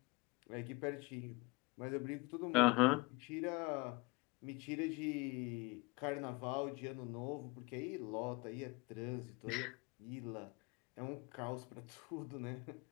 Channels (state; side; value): quieter; right; 26.0 dB